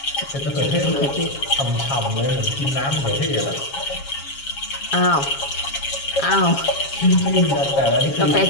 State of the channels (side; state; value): right; late; 7.3 ms